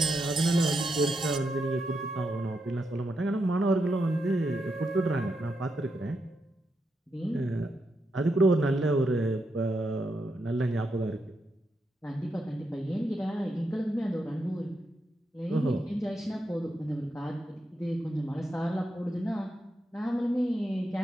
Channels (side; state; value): both; normal; correlation 0.83